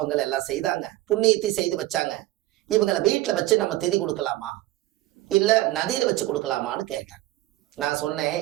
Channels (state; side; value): quieter; left; 16.7 dB